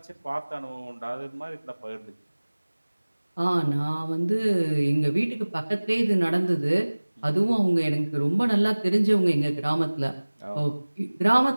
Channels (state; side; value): inverted; both; correlation -1.00